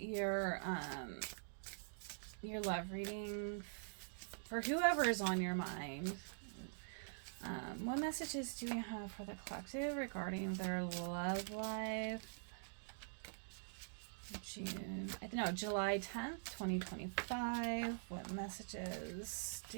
love reading for whoever is on your mind. What messages do we have for the collective regarding their love life? July 10th, 2025. What messages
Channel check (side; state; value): left; silent; digital silence